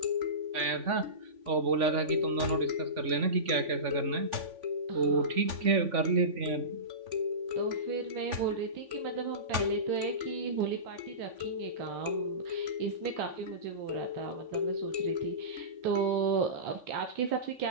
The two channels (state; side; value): late; left; 3.5 ms